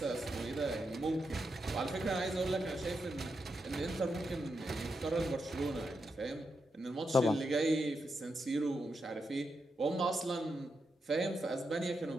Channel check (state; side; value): normal; both; correlation 0.85